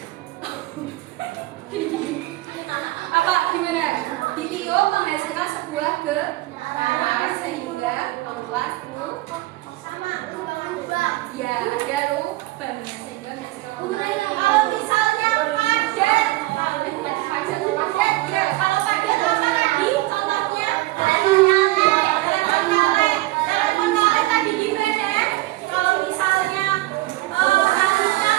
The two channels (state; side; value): quieter; left; 18.9 dB